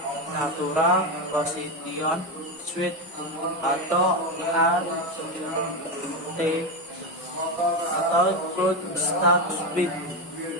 natural, position switch atau RT atau flood start switch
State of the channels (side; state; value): both; normal; correlation 0.12